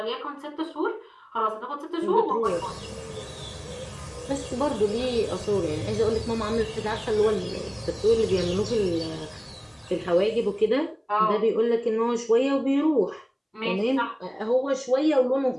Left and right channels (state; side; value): identical; both; correlation 1.00